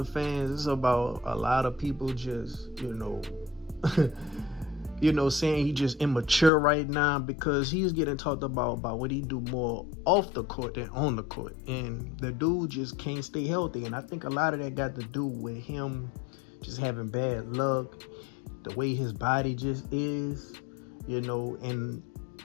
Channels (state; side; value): drops out; right; at 6.5 s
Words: fans. It's about a lot of people just, saying he's just immature right now because he's getting talked about what he do more off the court than on the court. And the dude just can't stay healthy. And I think a lot of that got to do with him just having bad luck, the way his body just is, and